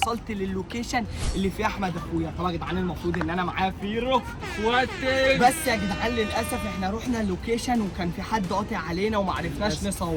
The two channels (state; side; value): identical; both; correlation 1.00